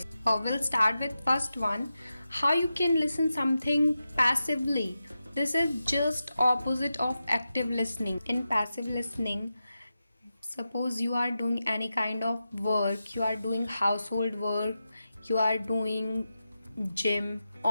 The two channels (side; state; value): both; inverted; correlation -0.91